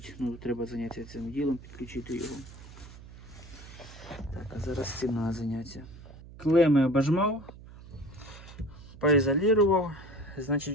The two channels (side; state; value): right; noise; hum, 17 dB below the sound